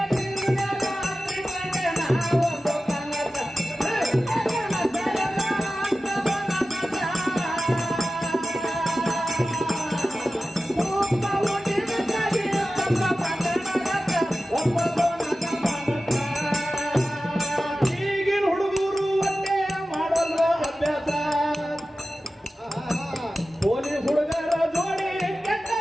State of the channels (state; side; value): normal; both; correlation 0.95